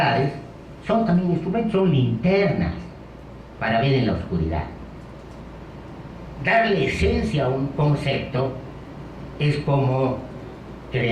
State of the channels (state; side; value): identical; both; correlation 1.00